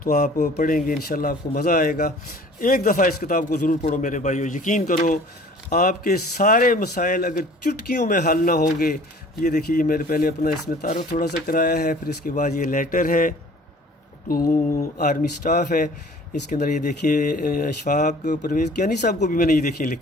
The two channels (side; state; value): both; normal; correlation 0.50